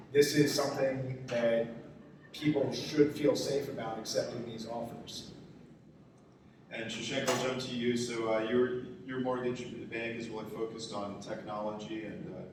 this is something that people should feel safe about accepting these offers. And Shashank, I'll jump to you. So your mortgage bank is really focused on technology, and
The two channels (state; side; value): identical; both; correlation 1.00